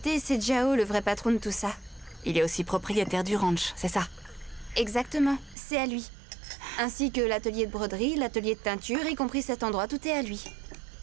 c'est Jiao le vrai patron de tout ça. Il est aussi propriétaire du ranch, c'est ça? Exactement, c'est à lui. Ainsi que l'atelier de broderie, l'atelier de teinture, y compris cet endroit, tout est à lui.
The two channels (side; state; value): left; drops out; at 5.6 s